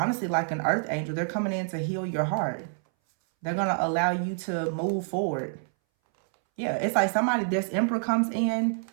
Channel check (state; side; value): silent; left; 60 dB below the other